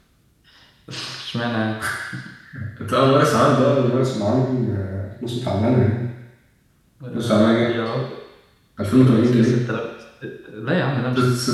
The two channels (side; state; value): both; identical; correlation 1.00